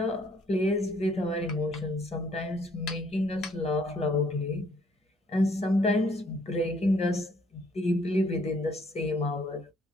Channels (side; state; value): both; normal; correlation 0.64